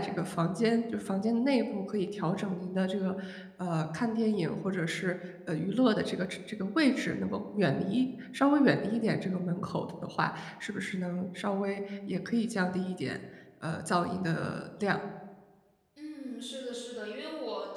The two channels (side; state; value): both; identical; correlation 1.00